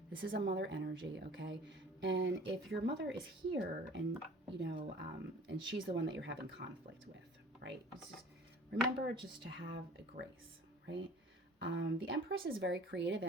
This is a mother energy, okay? And if your mother is here and, and she's the one that you're having conflict with, right? Remember just to have a grace, right? The Empress is very creative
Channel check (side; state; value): both; normal; correlation 0.46